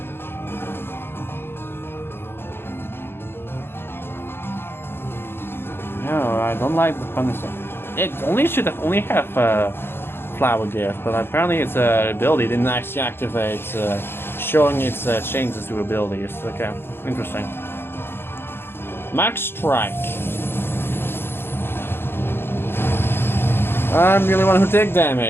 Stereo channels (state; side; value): late; right; 0.11 ms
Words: No, I don't like the punishment. It only should have only have flower gift, but apparently its ability didn't actually activate, showing its changes to abilities. Okay, interesting. Max Strike. I'm the only one who take